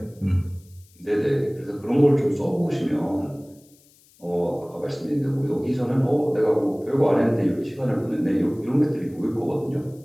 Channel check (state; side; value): noise; left; hiss, 30 dB below the sound